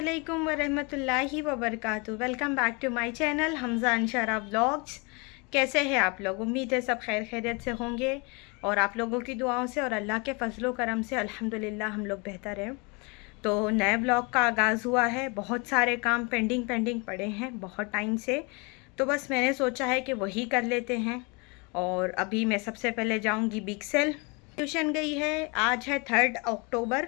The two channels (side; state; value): right; quieter; 30.1 dB